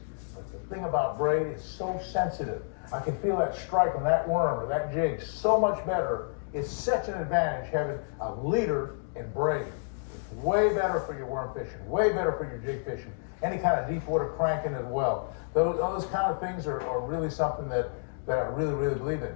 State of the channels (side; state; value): right; silent; digital silence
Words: But the thing about braid is so sensitive. I can feel that strike on that worm or that jig so much better. It's such an advantage having a leader and braid. It's way better for your worm fishing, way better for your jig fishing, any kind of deep water cranking as well. Those kind of things are really something that I really, really believe in.